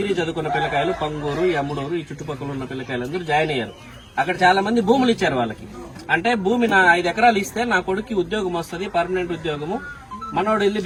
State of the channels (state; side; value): identical; both; correlation 1.00